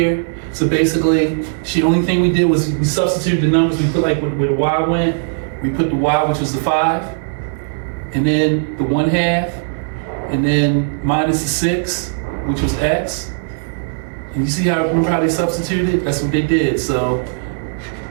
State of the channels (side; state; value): left; silent; digital silence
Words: So basically, the only thing we did was we substituted the numbers. We put like where the y went. We put the y, which was the 5, and then the 1/2, and then minus the 6, which was x. And you see remember how they substituted? That's what they did. So,